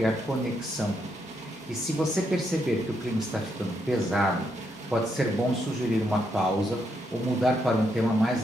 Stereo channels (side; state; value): both; normal; correlation 0.78